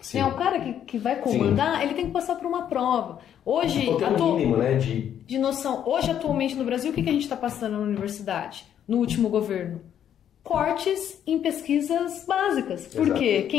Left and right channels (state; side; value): quieter; right; 9.7 dB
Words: Né? O cara que vai comandar, ele tem que passar por uma prova. Hoje, mínimo, né, de noção. Hoje, atualmente no Brasil, o que a gente está passando na universidade, no último governo? Cortes em pesquisas básicas. Porque